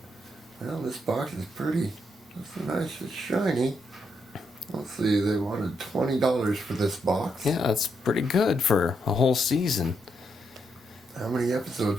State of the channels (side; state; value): both; normal; correlation 0.79